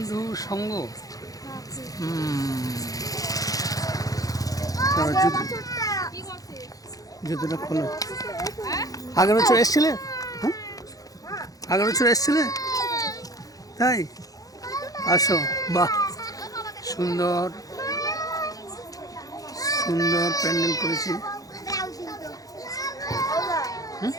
সঙ্গ। জুতোটা খোলো। আগের বছর এসছিলে? হ্যাঁ, আগের বছর এসছিলে? তাই আসো। বাহ, সুন্দর সুন্দর প্যান্ডেল করেছি।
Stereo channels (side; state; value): right; late; 0.17 ms